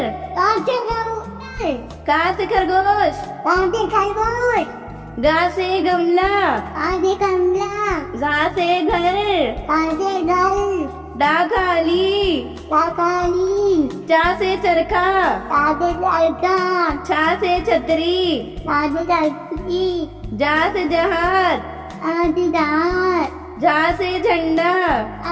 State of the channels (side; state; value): both; identical; correlation 1.00